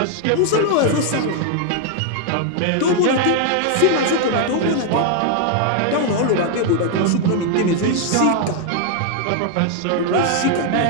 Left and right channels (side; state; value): both; different; correlation 0.00